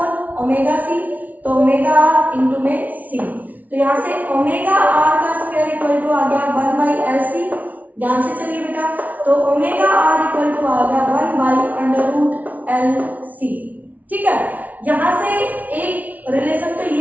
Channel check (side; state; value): left; late; 0.074 ms